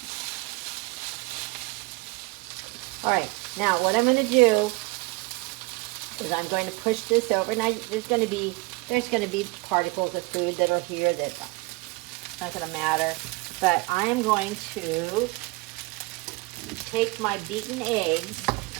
All right, now what I'm going to do is I'm going to push this over. Now there's going to be particles of food that are here that's not going to matter. But I am going to take my beaten eggs,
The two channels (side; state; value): left; quieter; 24.1 dB